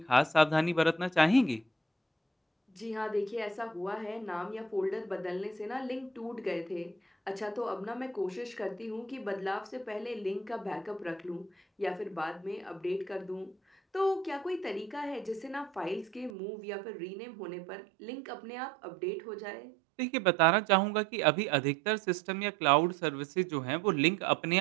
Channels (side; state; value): left; drops out; at 16.3 s